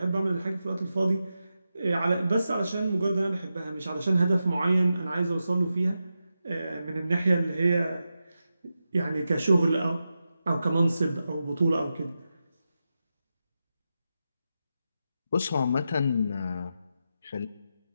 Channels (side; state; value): both; inverted; correlation -0.90